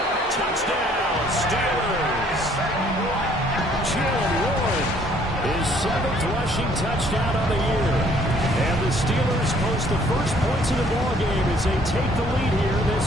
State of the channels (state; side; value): normal; both; correlation 0.61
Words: Touchdown, Steelers. Jalen Warren, his 7th rushing touchdown on the year. And the Steelers post the first points of the ballgame as they take the lead here in this